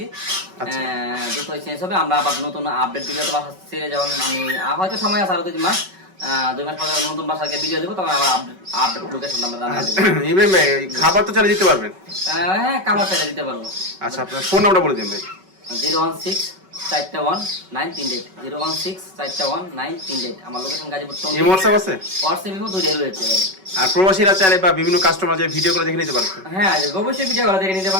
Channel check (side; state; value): left; late; 5.3 ms